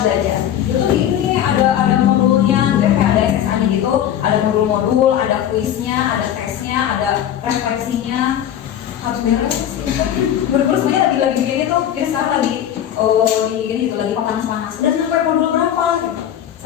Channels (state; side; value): quieter; right; 10.5 dB